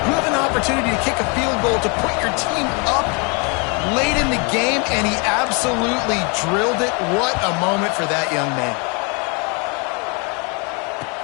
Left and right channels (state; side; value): quieter; right; 33.5 dB